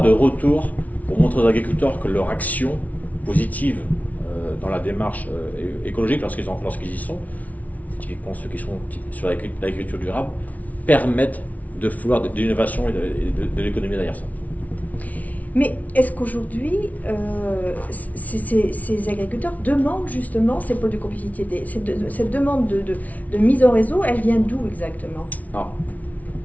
retour pour montrer aux agriculteurs que leur action positive dans la démarche écologique, lorsqu'ils y sont, typiquement ceux qui sont sur l'agriculture durable, permettent de faire de l'innovation et de l'économie derrière ça. Mais est-ce qu'aujourd'hui, ces agriculteurs demandent justement ces pôles de compétitivité? Cette demande de mise en réseau, elle vient d'où exactement? Alors,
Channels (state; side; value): late; right; 0.072 ms